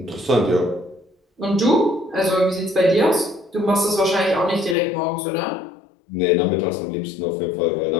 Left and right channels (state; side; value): drops out; right; at 4.8 s